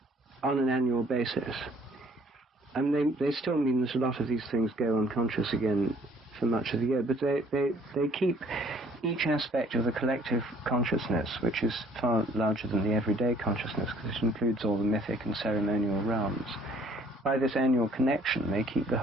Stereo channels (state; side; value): normal; both; correlation 0.59